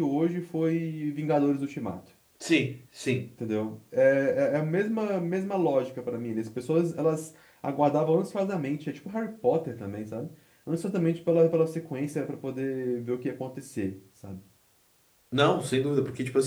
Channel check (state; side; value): identical; both; correlation 1.00